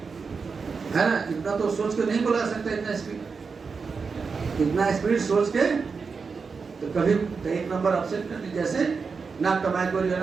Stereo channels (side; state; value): left; quieter; 5.1 dB